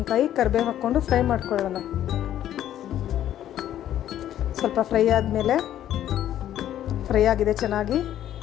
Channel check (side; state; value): right; quieter; 11.6 dB